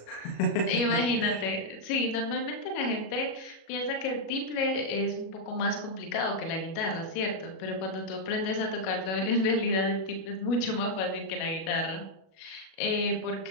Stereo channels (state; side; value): late; right; 37 ms